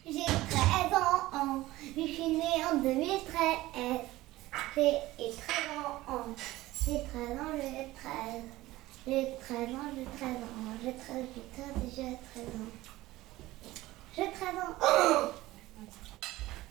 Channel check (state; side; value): quieter; left; 17.6 dB